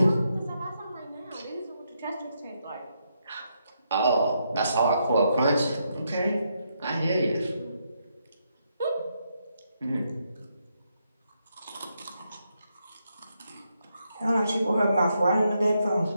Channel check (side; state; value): both; inverted; correlation -0.80